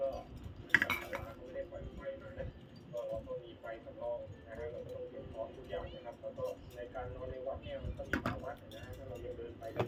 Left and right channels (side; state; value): both; identical; correlation 1.00